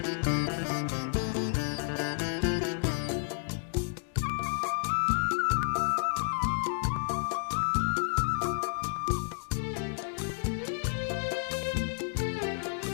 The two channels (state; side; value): silent; right; digital silence